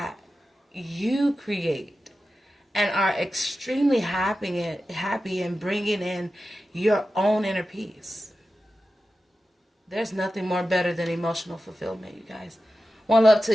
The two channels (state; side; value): normal; both; correlation 0.93